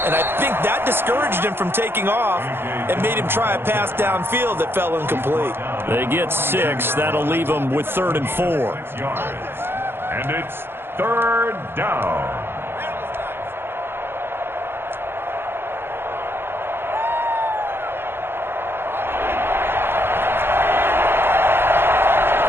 and I think that discouraged him from taking off and made him try a pass downfield that fell incomplete. They get 6. That'll leave them with 3rd and 4. And it's 3rd down.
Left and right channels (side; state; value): left; late; 0.11 ms